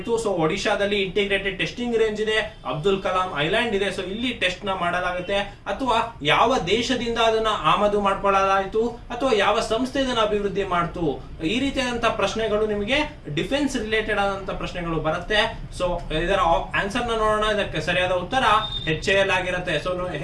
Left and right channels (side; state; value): both; identical; correlation 1.00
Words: ಸೊ ಒಡಿಶಾದಲ್ಲಿ ಇಂಟಿಗ್ರೇಟೆಡ್ ಟೆಸ್ಟಿಂಗ್ ರೇಂಜ್ ಇದೆ, ಅಬ್ದುಲ್ ಕಲಾಂ ಐಲ್ಯಾಂಡ್ ಇದೆ. ಸೊ ಇಲ್ಲಿ ಟೆಸ್ಟ್ ನ ಮಾಡಲಾಗುತ್ತೆ. ಅಥವಾ ಯಾವ ದೇಶದಿಂದ ಅದನ್ನ ಆಮದು ಮಾಡ್ಕೊಳ್ಳಲಾಯಿತು, ಅಥವಾ ಯಾವ ಸಂಸ್ಥೆ ಇದನ್ನ ಅಭಿವೃದ್ಧಿ ಮಾಡ್ತು? ಈ ರೀತಿಯಾದಂತಹ ಪ್ರಶ್ನೆಗಳು ನಿಮಗೆ ಡಿಫೆನ್ಸ್ ರಿಲೇಟೆಡ್ ಆದಂತ ಪ್ರಶ್ನೆಗಳು ಬರುತ್ತೆ. ಸೊ ಇದರ ಆನ್ಸರ್ ನ ನೋಡೋಣ. ಇದಕ್ಕೆ ಸರಿಯಾದ ಉತ್ತರ HAL ಆಗಿರುತ್ತೆ. ಸೊ